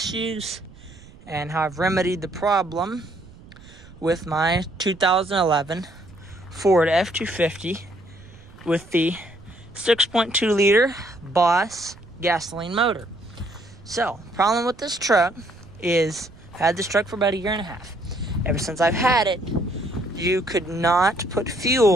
and how I've remedied the problem with my 2011 Ford F250 with the 6.2 liter Boss gasoline motor. So, problem with this truck is I've had this truck for about a year and a half. Ever since I've had it, you could not put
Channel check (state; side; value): noise; right; rumble, 22 dB below the sound